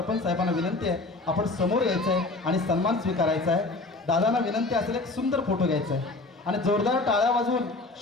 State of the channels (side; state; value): right; quieter; 3.2 dB